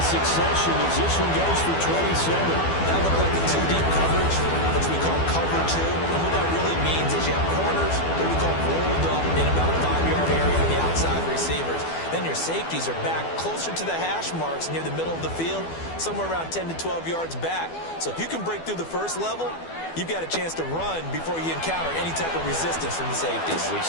succession as this one goes for 27. That looked like a two-deep coverage, which we call cover two. And what that really means is you have corners that we call rolled up in about a 5-yard area on the outside receivers. Then your safeties are back closer to the hash marks near the middle of the field, somewhere around 10 to 12 yards back. So if you can break through the first level, you've got a chance to run before you encounter any type of resistance from the safeties. We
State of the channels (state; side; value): late; right; 12 ms